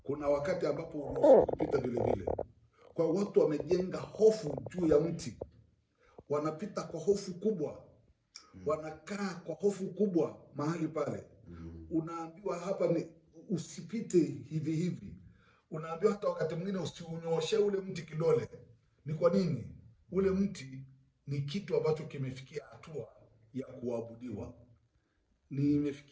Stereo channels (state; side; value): identical; both; correlation 1.00